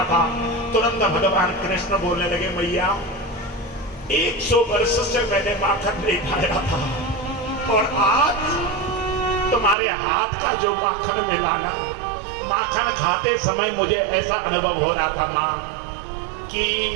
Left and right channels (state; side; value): drops out; left; at 9.8 s